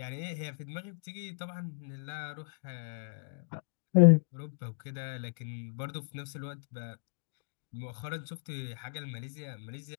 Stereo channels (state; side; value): silent; right; digital silence